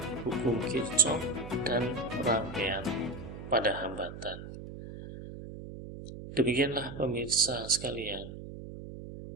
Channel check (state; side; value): noise; right; hum, 11 dB below the sound